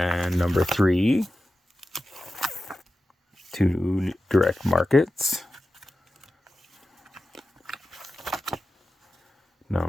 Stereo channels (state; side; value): normal; both; correlation 0.93